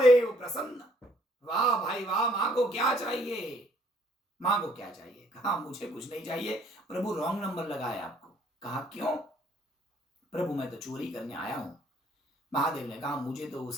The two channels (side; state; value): both; normal; correlation 0.64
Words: प्रसन्न। वाह भाई वाह, माँ को क्या चाहिए, माँ को क्या चाहिए? कहा मुझे कुछ नहीं चाहिए। प्रभु रॉन्ग नंबर लगाया आपको। कहा क्यों? प्रभु मैं तो चोरी करने आया हूं। महादेव ने कहा मुझे तो